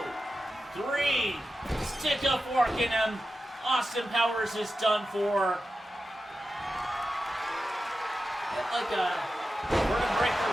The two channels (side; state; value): both; normal; correlation 0.91